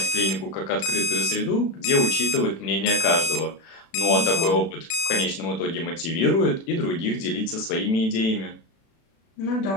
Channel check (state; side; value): late; right; 36 ms